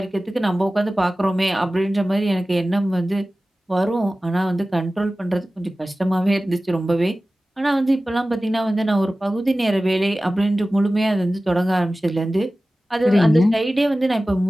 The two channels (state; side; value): normal; both; correlation 0.96